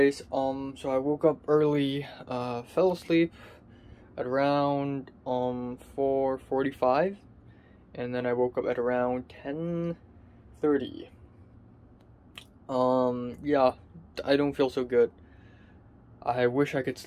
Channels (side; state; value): both; identical; correlation 1.00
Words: so I woke up early, fell asleep at around, 4:45, and then I woke up at around 10:30. Yeah, I don't feel so good. I wish I could